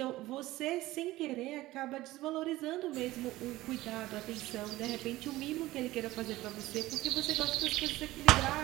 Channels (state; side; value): quieter; left; 17.3 dB